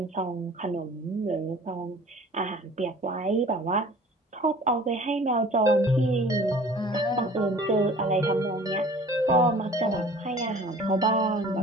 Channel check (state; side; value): normal; both; correlation 0.47